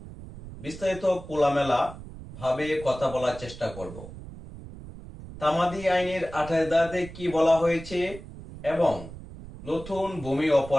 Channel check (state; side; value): noise; right; rumble, 14 dB below the sound